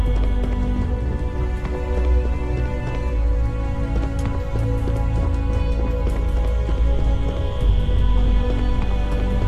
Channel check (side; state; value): both; identical; correlation 1.00